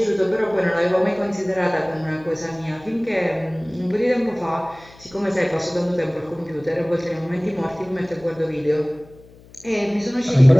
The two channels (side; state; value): left; noise; hum, 24 dB below the sound